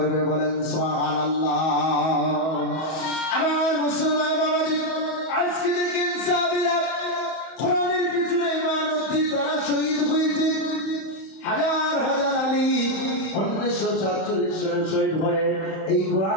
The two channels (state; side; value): late; right; 31 ms